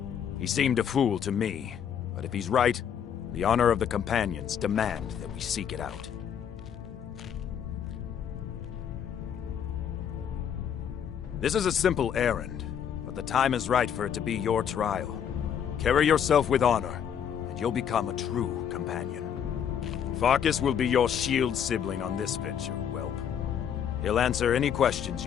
He seemed a fool to me, but if he's right, the honor of the Companions demand that we seek it out. This is a simple errand, but the time is right for it to be your trial. Carry yourself with honor, and you'll become a true companion. Farkas will be your shield sibling on this venture, whelp. He'll answer any questions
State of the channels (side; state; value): right; quieter; 8.5 dB